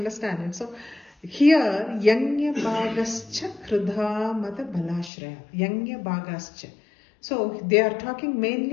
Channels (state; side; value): drops out; right; at 5.1 s